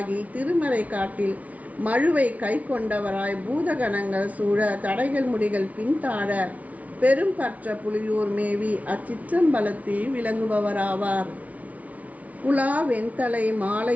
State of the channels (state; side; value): late; left; 0.070 ms